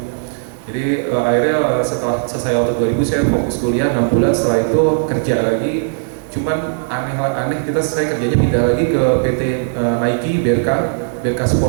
Jadi akhirnya setelah selesai Auto 2000 saya fokus kuliah 6 bulan, setelah itu kerja lagi. Cuman aneh saya kerjanya pindah lagi ke PT Nike, BRK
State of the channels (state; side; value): silent; left; 68 dB below the other